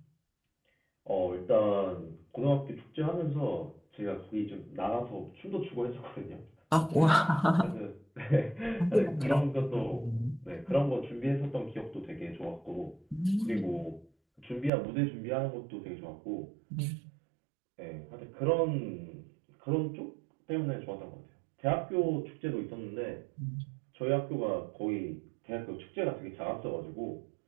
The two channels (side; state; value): left; drops out; at 14.7 s